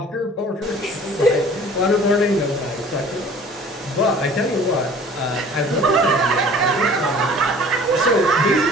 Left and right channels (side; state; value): both; normal; correlation 0.49